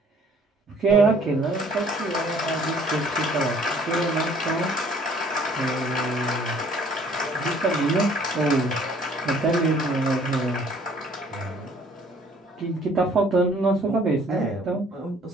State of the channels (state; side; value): normal; both; correlation 0.57